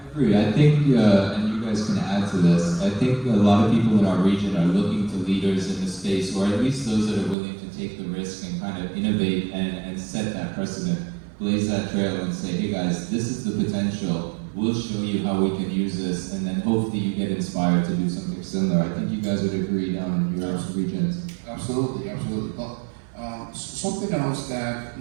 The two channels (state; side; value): drops out; left; at 7.4 s